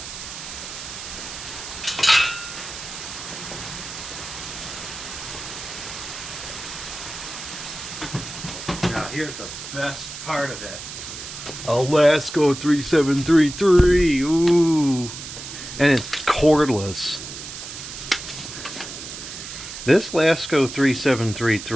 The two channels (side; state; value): right; noise; hiss, 10 dB below the sound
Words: Now here's the best part of it. A Lasko 3733. Ooh. And it's cordless. This Lasko